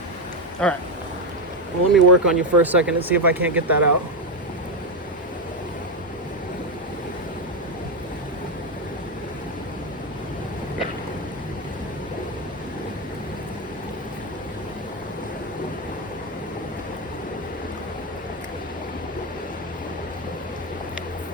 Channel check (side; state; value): both; normal; correlation 0.07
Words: All right. Well, let me work on you for a second and see if I can't get that out.